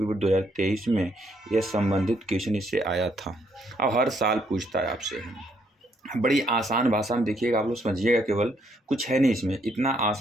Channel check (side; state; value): both; normal; correlation 0.71